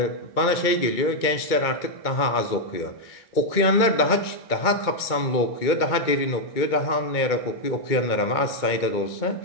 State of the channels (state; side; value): late; right; 2.2 ms